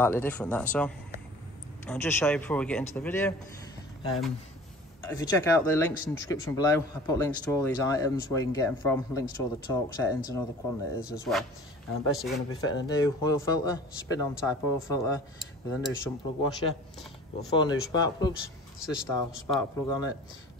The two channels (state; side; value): normal; both; correlation 0.44